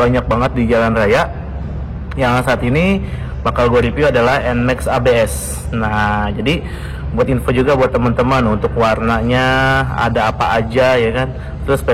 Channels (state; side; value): identical; both; correlation 1.00